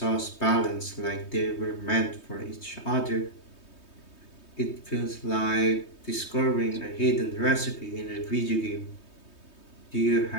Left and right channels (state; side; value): late; right; 3.2 ms